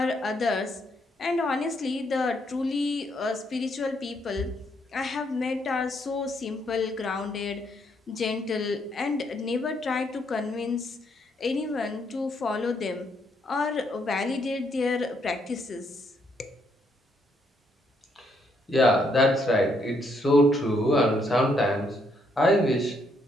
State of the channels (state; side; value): normal; both; correlation 0.73